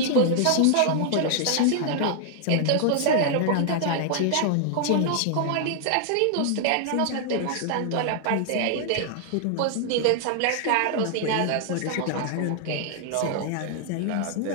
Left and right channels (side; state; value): both; different; correlation -0.01